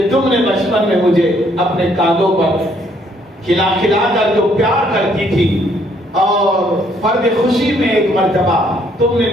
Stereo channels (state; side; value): normal; both; correlation 0.67